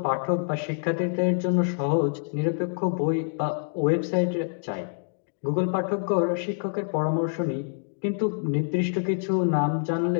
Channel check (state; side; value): silent; right; digital silence